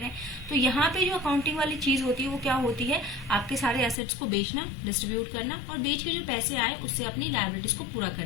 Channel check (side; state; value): right; drops out; at 4.0 s